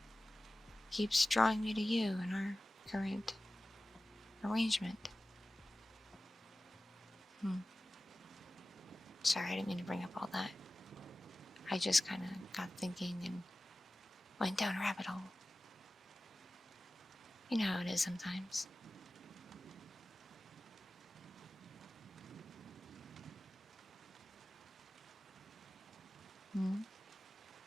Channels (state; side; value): normal; both; correlation 0.96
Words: keeps drawing me to you in our current arrangement. Sorry, I didn't mean to bring up all that. I just kind of got thinking and went down a rabbit hole. You know how it is sometimes.